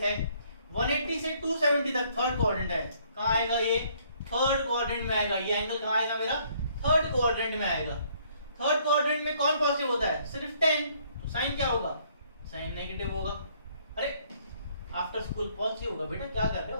है, 180 से 270 तक थर्ड क्वाड्रेंट है। कहाँ आएगा ये? थर्ड क्वाड्रेंट में आएगा। ये एंगल कहाँ आएगा मेरा? थर्ड क्वाड्रेंट में आएगा। थर्ड क्वाड्रेंट में कौन पॉजिटिव होता है? सिर्फ 10, तो साइन क्या होगा? साइन नेगेटिव होगा। अरे आफ्टर स्कूल पॉजिटिव होगा बेटा, क्या कर रहे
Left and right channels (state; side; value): inverted; both; correlation -0.64